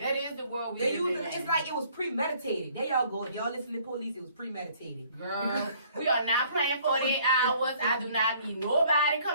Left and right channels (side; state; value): both; inverted; correlation -0.60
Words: is the world we They live use in. it's like it was premeditated. There y'all go. If y'all listen to police, it was premeditated. Girl, we are not playing 48 hours. I do not need nobody